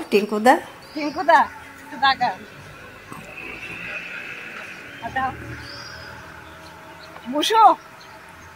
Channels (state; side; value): identical; both; correlation 1.00